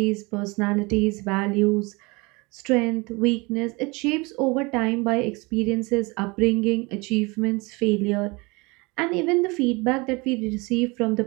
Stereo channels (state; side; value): quieter; left; 26.3 dB